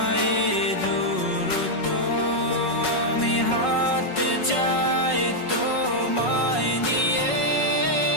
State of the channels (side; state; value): right; late; 5.4 ms